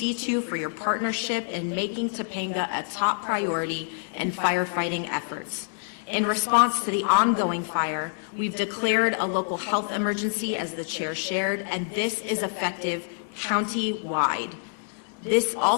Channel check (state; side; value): silent; right; digital silence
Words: for your partnership in making Topanga a top priority in firefighting efforts. In response to the ongoing fire, we've declared a local health emergency, as the chair shared, and this is effective county-wide. This